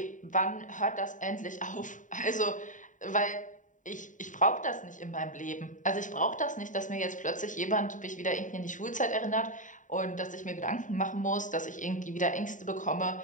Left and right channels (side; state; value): right; late; 0.37 ms